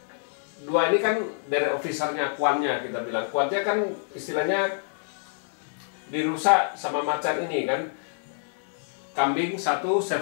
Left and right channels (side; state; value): right; silent; 60 dB below the other